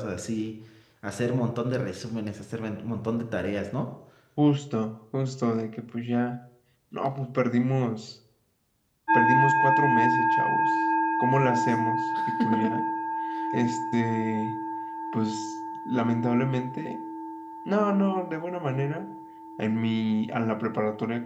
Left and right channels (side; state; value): both; identical; correlation 1.00